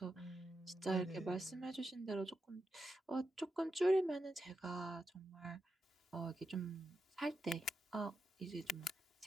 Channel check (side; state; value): both; normal; correlation 0.87